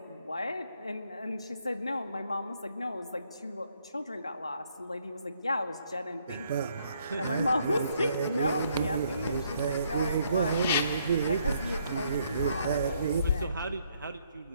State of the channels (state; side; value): inverted; both; correlation -0.70